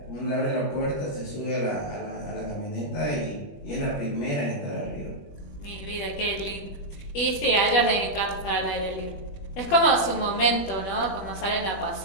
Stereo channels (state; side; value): late; right; 21 ms